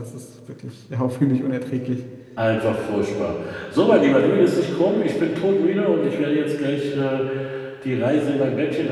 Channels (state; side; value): identical; both; correlation 1.00